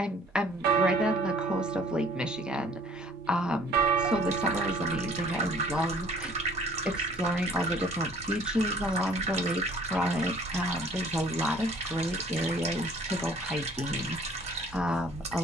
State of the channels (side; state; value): both; normal; correlation 0.54